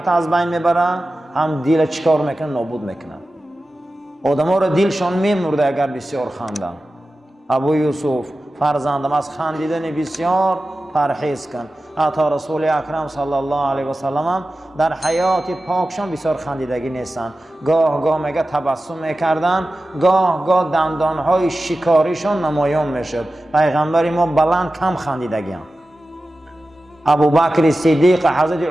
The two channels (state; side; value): normal; both; correlation 0.94